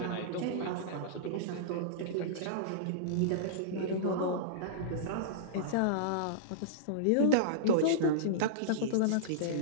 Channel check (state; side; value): different; both; correlation -0.03